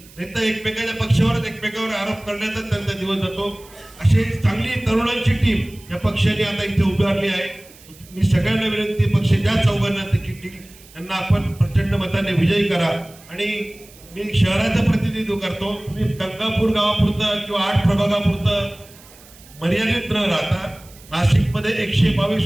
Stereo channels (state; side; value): noise; right; hiss, 23 dB below the sound